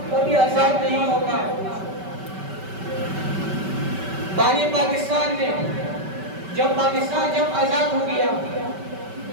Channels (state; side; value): late; left; 5.2 ms